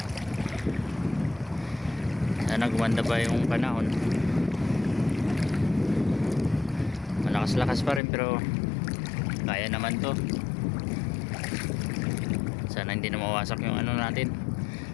Sana gumanda ba yung panahon. Malakas-lakas pa rin pero kaya naman to. Sana hindi na mawasak yung ano natin,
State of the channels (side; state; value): right; drops out; at 8.0 s